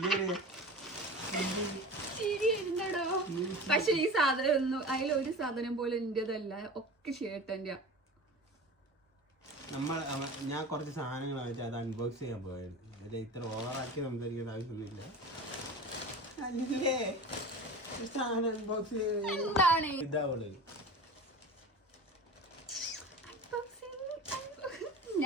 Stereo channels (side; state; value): both; normal; correlation 0.33